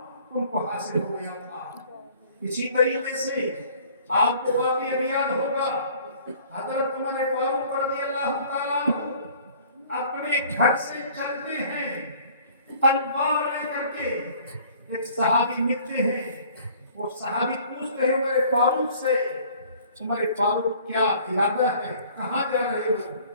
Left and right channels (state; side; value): inverted; both; correlation -0.53